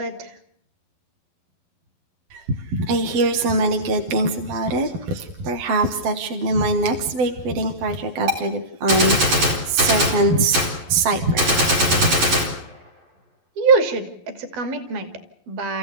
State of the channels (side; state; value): left; late; 11 ms